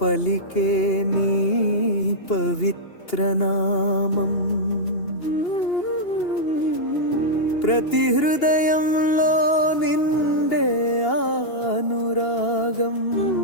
పలికే నీ పవిత్ర నామం ప్రతి హృదయంలో నిండే అనురాగం.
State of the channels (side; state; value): right; late; 2.8 ms